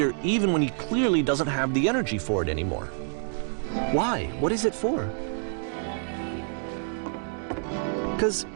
even when he clearly doesn't have the energy for it anymore. Why? What is it for? Because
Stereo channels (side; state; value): left; silent; digital silence